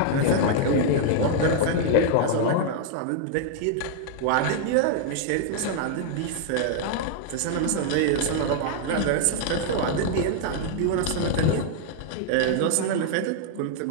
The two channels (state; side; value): different; both; correlation 0.00